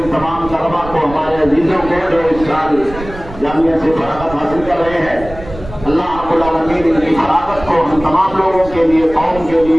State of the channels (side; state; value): right; noise; rumble, 14 dB below the sound